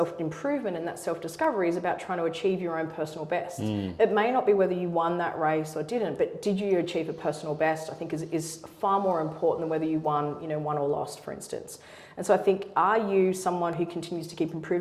and that self-discovery is about trying to achieve your own personal best. It may not be whether you won that race or didn't, but did you achieve a personal best, I think is far more important than whether you won or lost, for instance. And so I think, are you someone who continues to keep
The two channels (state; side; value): identical; both; correlation 1.00